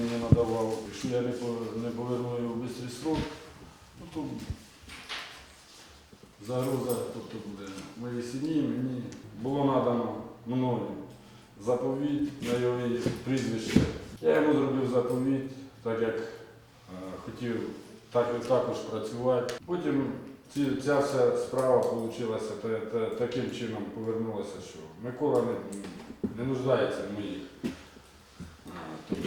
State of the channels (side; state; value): both; identical; correlation 1.00